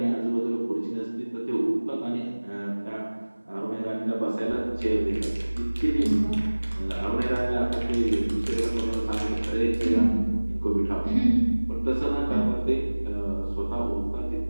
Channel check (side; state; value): both; inverted; correlation -1.00